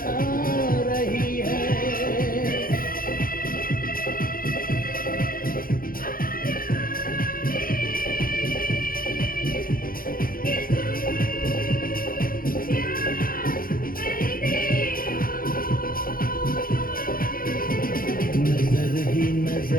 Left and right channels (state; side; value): late; right; 0.42 ms